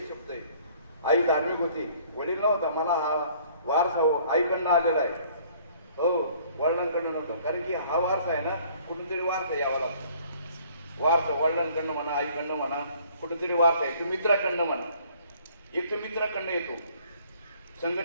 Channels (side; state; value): both; inverted; correlation -0.57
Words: शब्द आहे. आई धार्मिक होती, वडील नव्हता. मला हा वारसा आईकडनं आलेला आहे, हो वडिलांकडनं नव्हता. कारण की हा वारसा आहे ना, कुठूनतरी वारसा यावा लागतो. वारसा वडिलांकडनं म्हणा, आईकडनं म्हणा, कुठेतरी वारसा आहे. तो मित्राकडनं म्हणा. एक तर मित्राकडनं येतो,